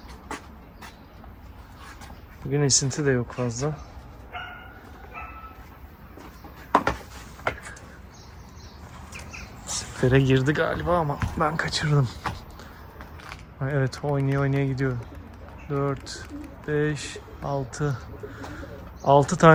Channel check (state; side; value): identical; both; correlation 1.00